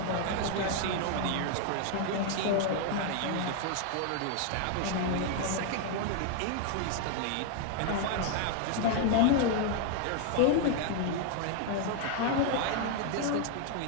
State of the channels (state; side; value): different; both; correlation 0.00